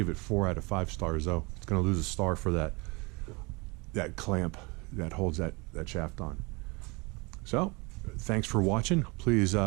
it 4 out of 5 stars though. It's going to lose a star for that clamp that holds that shaft on. So thanks for watching. Please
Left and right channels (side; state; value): left; quieter; 27.6 dB